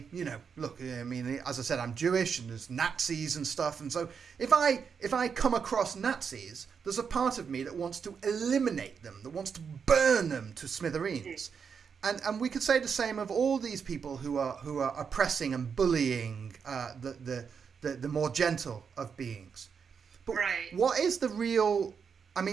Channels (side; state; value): left; quieter; 6.4 dB